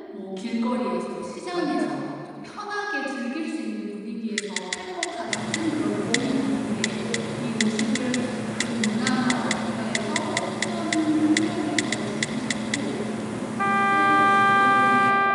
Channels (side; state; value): both; identical; correlation 1.00